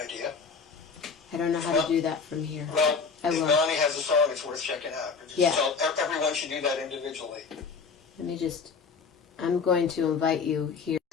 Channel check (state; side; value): quieter; right; 5.3 dB